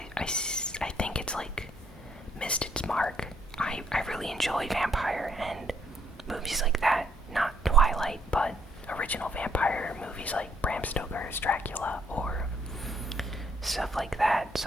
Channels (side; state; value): both; normal; correlation 0.68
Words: think it's missed its mark. I really enjoy vampire and movies like that. Not Twilight, but original vampire movies like Bram Stoker's Dracula or stuff like that.